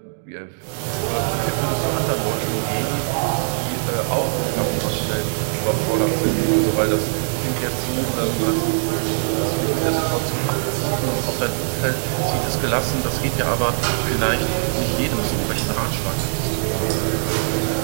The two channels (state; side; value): silent; left; digital silence